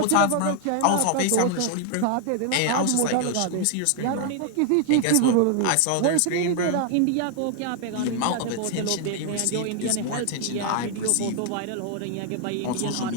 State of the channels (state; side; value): different; both; correlation 0.00